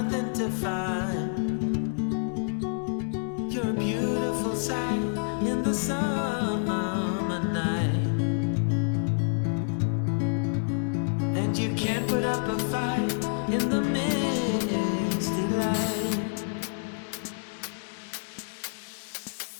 to find, you're a beautiful sight in the summer night. And you can't put up a fight in the misty light.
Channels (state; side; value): silent; right; digital silence